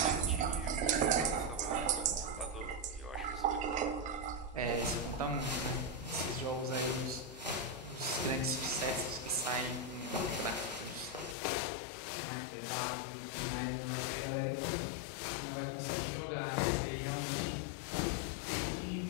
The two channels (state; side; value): drops out; right; at 11.4 s